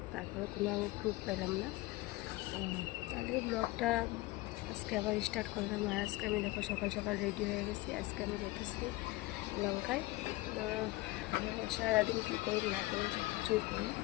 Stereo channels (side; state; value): right; quieter; 20.2 dB